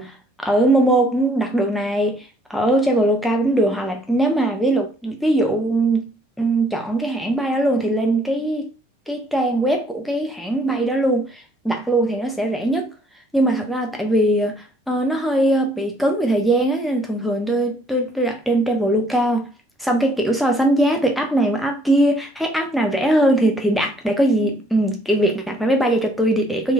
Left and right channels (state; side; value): normal; both; correlation 0.64